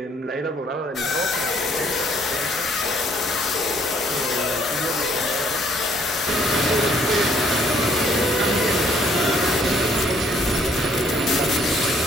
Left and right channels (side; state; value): both; normal; correlation 0.64